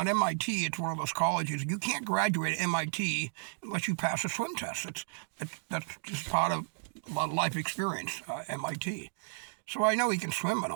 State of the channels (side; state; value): left; silent; digital silence